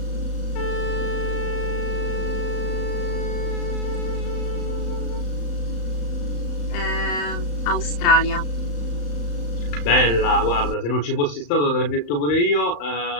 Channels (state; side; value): late; right; 35 ms